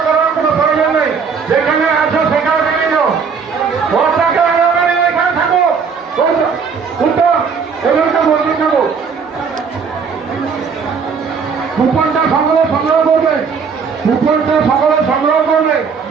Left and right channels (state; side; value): quieter; left; 5.8 dB